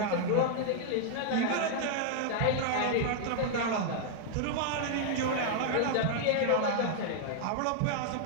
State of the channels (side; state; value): both; different; correlation -0.01